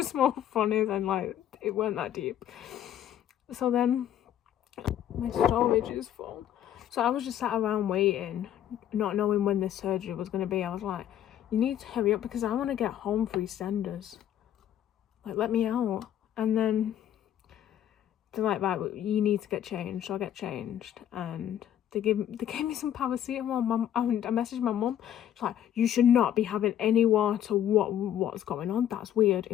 more funny than, like, it weren't that deep. So then, my storage is full. So I was just sat around waiting, not knowing when this surgery was going to be. I was like, you need to hurry up because I want to get home for EastEnders. Like, let me out. And then they're like, right, you need to get changed. So I get changed, and they gave me some paracetamol. I messaged my mum. She's like, you should not be having any water. What's going on? That's weird. It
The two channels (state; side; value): quieter; right; 10.8 dB